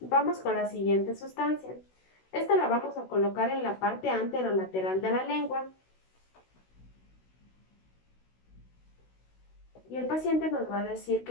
con la siguiente sustancia. Esta la vamos a colocar en la parte anterolateral de la lengua. Y el paciente nos va a decir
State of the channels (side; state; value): right; late; 16 ms